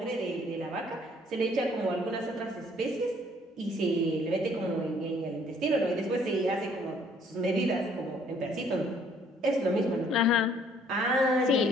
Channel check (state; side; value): normal; both; correlation 0.62